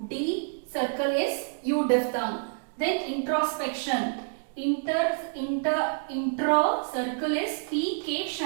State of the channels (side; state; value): left; silent; digital silence